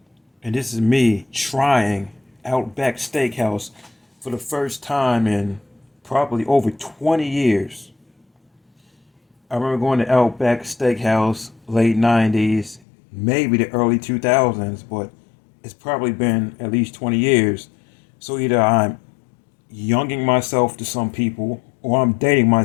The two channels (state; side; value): drops out; right; at 12.8 s